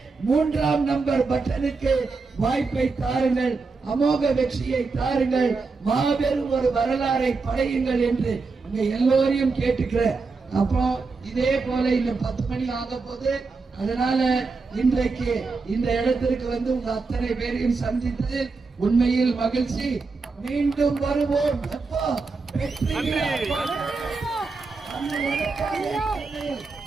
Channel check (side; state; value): left; quieter; 4.2 dB